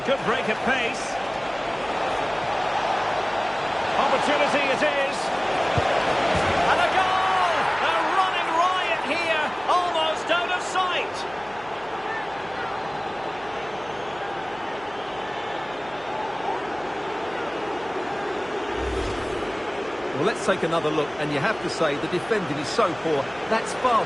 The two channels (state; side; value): noise; right; hum, 21 dB below the sound